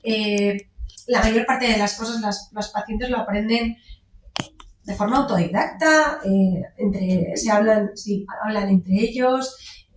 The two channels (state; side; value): identical; both; correlation 1.00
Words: La mayor parte de las cosas los pacientes lo aprenden de forma autodidacta, hablan entre ellos,